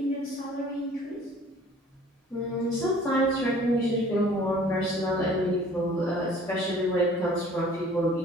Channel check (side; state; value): both; normal; correlation 0.51